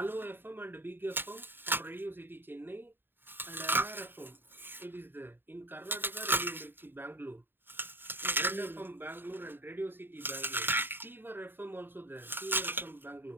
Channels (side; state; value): left; late; 0.097 ms